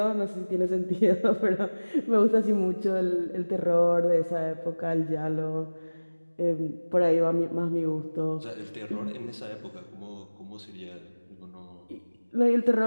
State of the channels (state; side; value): inverted; both; correlation -1.00